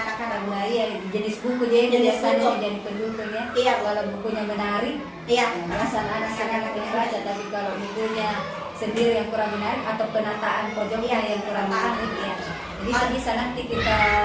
anak-anak. Nah iya, jenis buku jadi Jenis biasanya buku. jadi pendukungnya. Iya. Kalau bukunya menarik, Iya. alasan anak-anak yang baca. Tapi kalau bukunya sendiri yang kurang menarik atau penataan pojoknya yang kurang menarik, ya. Jadi itu bisa nanti kita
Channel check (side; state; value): both; identical; correlation 1.00